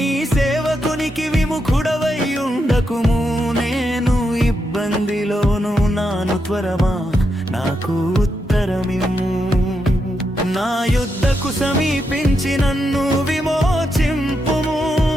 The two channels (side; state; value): both; normal; correlation 0.83